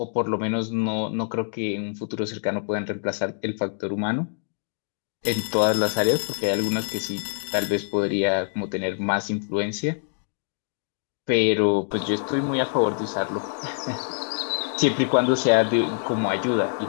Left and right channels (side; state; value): right; silent; digital silence